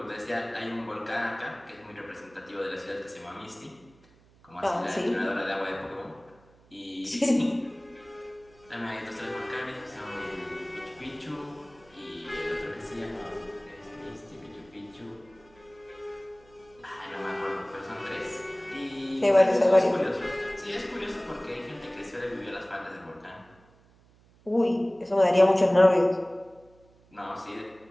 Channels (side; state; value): right; noise; hum, 29 dB below the sound